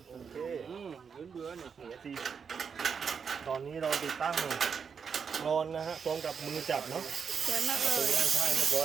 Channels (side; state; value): left; quieter; 6.3 dB